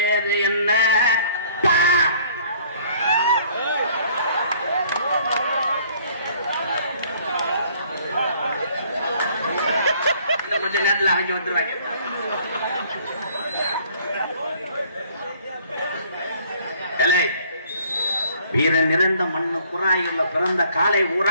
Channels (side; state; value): both; inverted; correlation -0.58